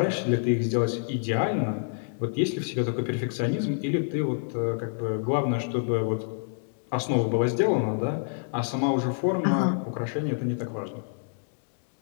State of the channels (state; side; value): silent; right; digital silence